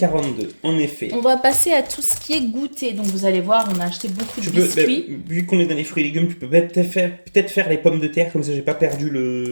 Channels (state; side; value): inverted; both; correlation -1.00